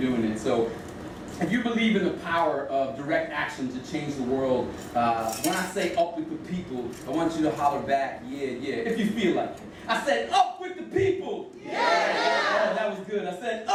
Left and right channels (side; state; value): both; identical; correlation 1.00